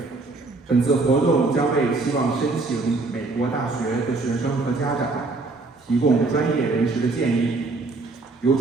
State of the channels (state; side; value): quieter; left; 3.6 dB